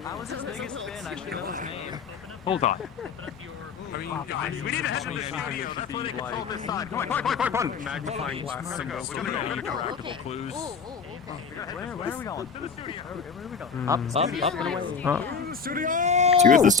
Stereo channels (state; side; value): quieter; right; 5.7 dB